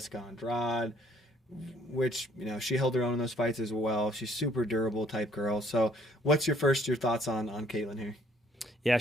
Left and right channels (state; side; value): normal; both; correlation 0.63